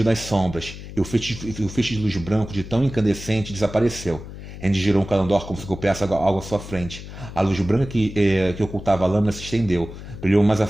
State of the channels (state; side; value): noise; left; hum, 12 dB below the sound